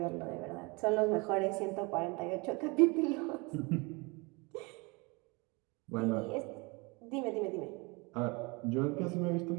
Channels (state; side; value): quieter; left; 27.7 dB